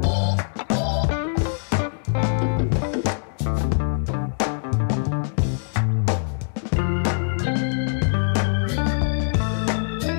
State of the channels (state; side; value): silent; right; digital silence